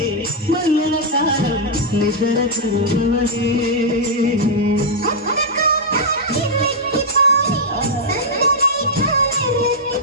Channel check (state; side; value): normal; both; correlation -0.05